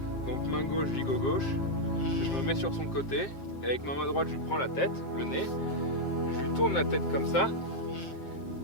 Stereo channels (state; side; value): late; right; 7.5 ms